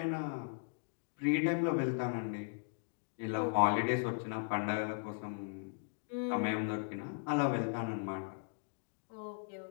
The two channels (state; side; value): silent; right; digital silence